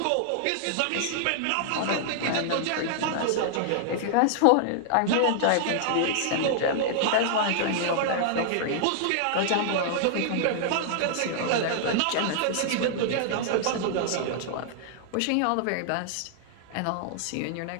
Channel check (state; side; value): different; both; correlation -0.01